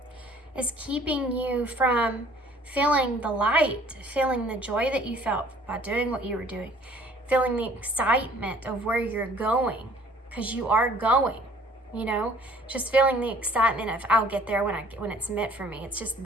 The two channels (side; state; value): both; normal; correlation 0.55